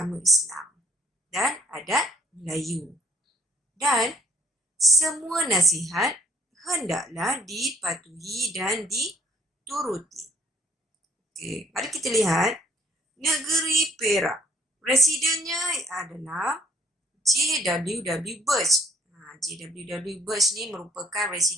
Islam dan adat Melayu. Dan semua nasihat hendaklah dipatuhi dan dituruti. Okey, mari kita lihat negeri Perak. Residennya adalah J.W.W. Birch. J.W.W. Birch ni merupakan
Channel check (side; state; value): both; normal; correlation 0.62